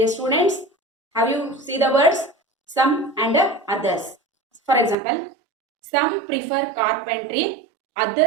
students, have you seen the words some and others? For example, some prefer carpentry,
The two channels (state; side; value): drops out; left; at 5.0 s